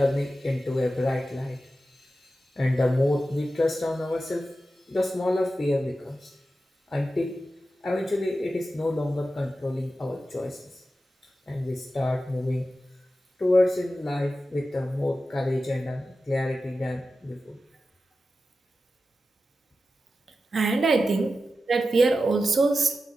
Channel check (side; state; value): both; normal; correlation 0.92